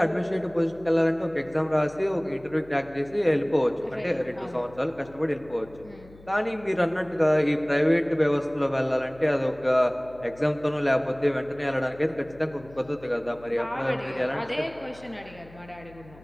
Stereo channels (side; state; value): left; noise; hum, 23 dB below the sound